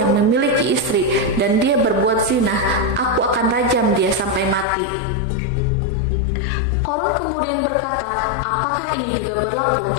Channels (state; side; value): drops out; right; at 4.7 s